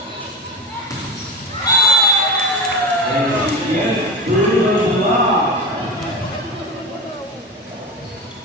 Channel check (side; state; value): both; normal; correlation 0.24